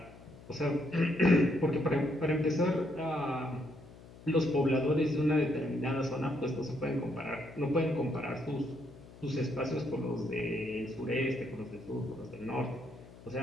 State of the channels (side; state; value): left; noise; hum, 20 dB below the sound